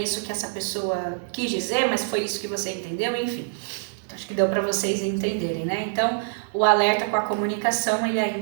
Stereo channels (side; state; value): left; silent; digital silence